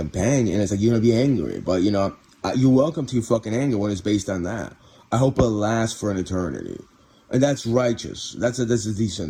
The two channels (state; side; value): identical; both; correlation 1.00